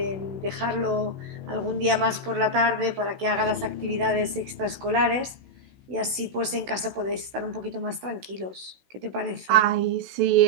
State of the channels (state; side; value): late; left; 16 ms